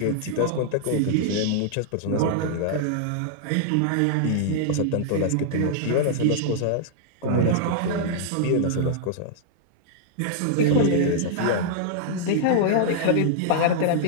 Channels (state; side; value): different; both; correlation -0.01